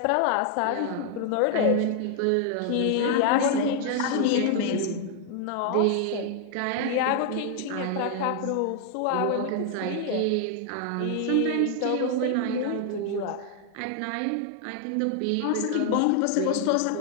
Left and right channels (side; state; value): both; different; correlation 0.00